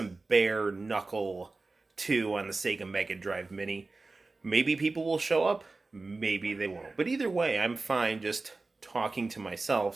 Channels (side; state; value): left; quieter; 3.5 dB